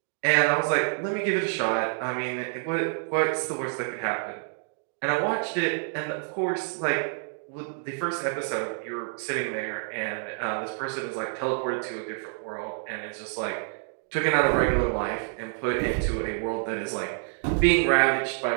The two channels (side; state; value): left; silent; 60 dB below the other